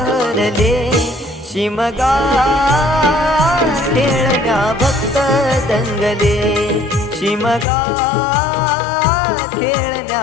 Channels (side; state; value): right; drops out; at 7.7 s